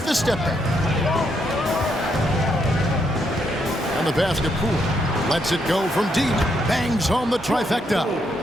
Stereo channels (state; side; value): normal; both; correlation 0.77